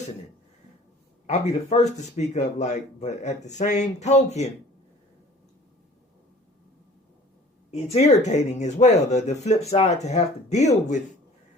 I'll be the first to speak up, but at the same token, it's irritating as well. The flip side to have to deal with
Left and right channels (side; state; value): both; normal; correlation 0.48